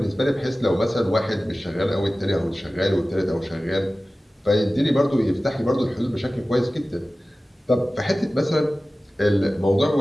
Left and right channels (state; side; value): normal; both; correlation 0.96